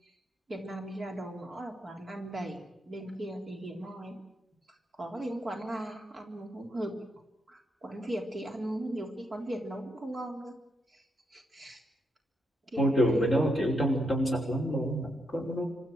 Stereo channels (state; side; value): normal; both; correlation 0.80